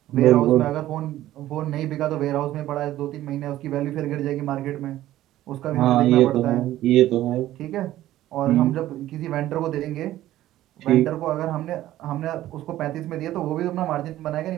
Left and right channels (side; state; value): left; quieter; 14.2 dB